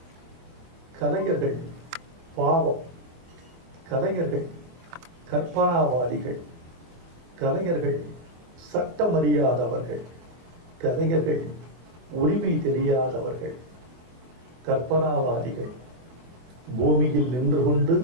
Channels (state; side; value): late; left; 24 ms